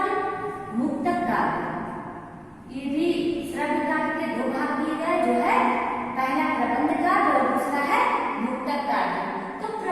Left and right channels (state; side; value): identical; both; correlation 1.00